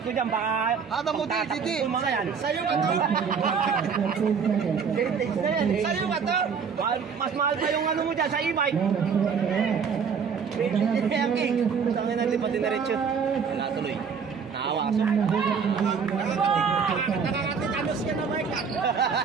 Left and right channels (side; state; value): left; quieter; 6.3 dB